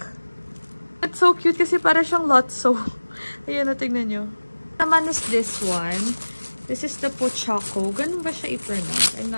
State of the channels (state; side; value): inverted; both; correlation -1.00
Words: It's so cute kasi para siyang Lotso. Ayan, tingnan nyo. Naman is this one. This is the Pochaco. Ganun ba siya i-pronounce? I'm